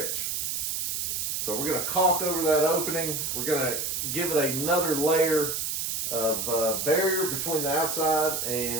So we're going to caulk over that opening. We're going to give it another layer of barrier between the outside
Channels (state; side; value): noise; right; hiss, 1 dB below the sound